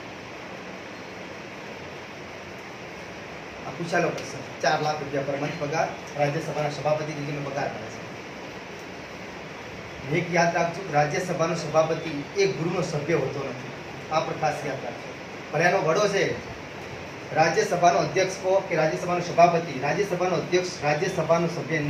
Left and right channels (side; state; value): both; identical; correlation 1.00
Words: પૂછાયેલો પ્રશ્ન, 4 લાખ રૂપિયા પર મંથ પગાર રાજ્યસભાના સભાપતિ તરીકે પગાર મળે છે. એક યાદ રાખજો, રાજ્યસભાનો સભાપતિ એક ગૃહનો સભ્ય હોતો નથી. આ પર ખાસ યાદ રાખજો. પણ એનો વડો છે રાજ્યસભાનો અધ્યક્ષ કહો કે રાજ્યસભાનો સભાપતિ, રાજ્યસભાનો અધ્યક્ષ રાજ્યસભાનો સભ્ય